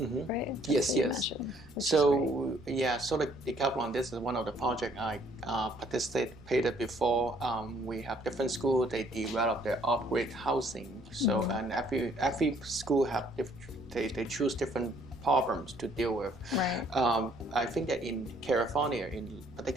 right? Yes. So so the decathlon, this is one of the projects I participated before. We have different schools, they develop their off-grid housing. So and every school have they choose different problems to deal with. Right. I think that in California,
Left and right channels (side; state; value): right; noise; rumble, 22 dB below the sound